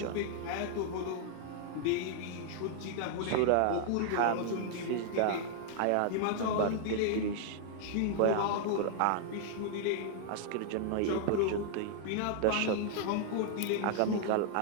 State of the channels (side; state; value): both; different; correlation -0.01